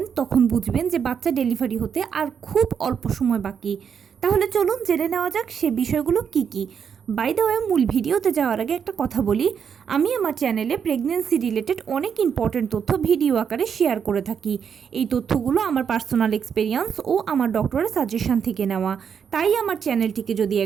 তখন বুঝবেন যে বাচ্চা ডেলিভারি হতে আর খুব অল্প সময় বাকি। তাহলে চলুন জেনে নেওয়া যাক সে বিষয়গুলো কি কি। বাই দ্য ওয়ে, মূল ভিডিওতে যাওয়ার আগে একটা কথা বলি, আমি আমার চ্যানেলে প্রেগনেন্সি রিলেটেড অনেক ইম্পর্টেন্ট তথ্য ভিডিও আকারে শেয়ার করে থাকি। এই তথ্যগুলো আমার পার্সোনাল এক্সপেরিয়েন্স ও আমার ডক্টরের সাজেশন থেকে নেওয়া। তাই আমার চ্যানেলটিকে যদি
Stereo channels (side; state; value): left; quieter; 7.2 dB